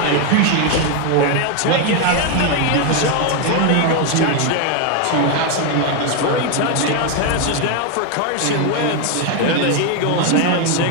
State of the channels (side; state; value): both; different; correlation 0.01